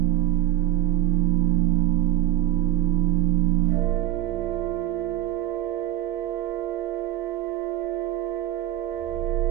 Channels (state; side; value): quieter; left; 14.1 dB